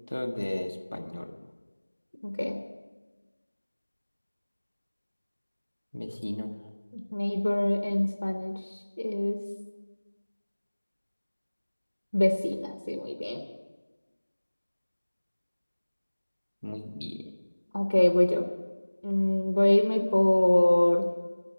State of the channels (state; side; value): inverted; both; correlation -1.00